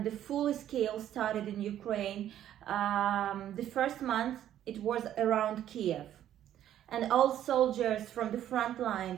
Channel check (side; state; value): left; quieter; 11.4 dB